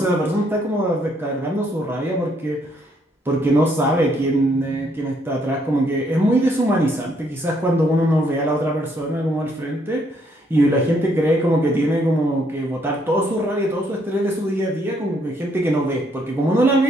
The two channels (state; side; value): normal; both; correlation 0.70